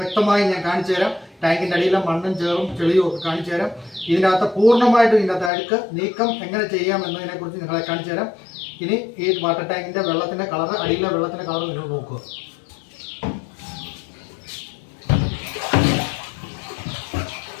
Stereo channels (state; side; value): drops out; right; at 5.5 s